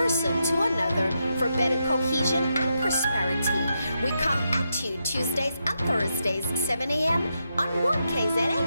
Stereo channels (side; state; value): both; inverted; correlation -0.84